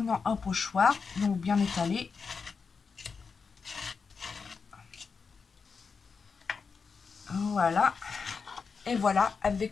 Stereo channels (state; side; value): quieter; right; 5.2 dB